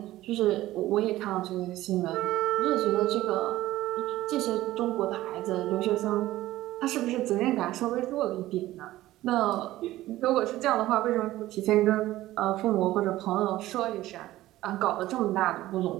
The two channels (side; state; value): left; quieter; 15.8 dB